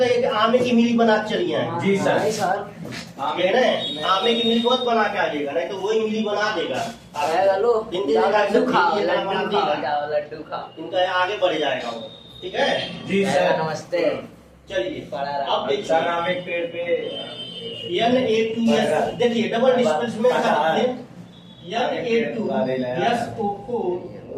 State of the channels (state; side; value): identical; both; correlation 1.00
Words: कि आमे की मिली बना के चलिए आए। जी सर। कह रहे हैं आमे की मिली मत बना के आ जाएगा, नहीं तो वही मिली बना देगा। लड्डू खाओ, लड्डू खाओ, इनका आगे बढ़ जाएगा वो, ठीक है। जी सर, नमस्ते। चलिए अब देखिए सर हम एक पेड़ पे Na2S देखिए डबल डिस्प्लेसमेंट का Na2SO4